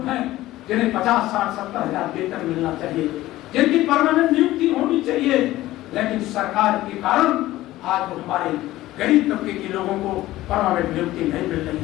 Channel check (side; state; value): right; quieter; 16.2 dB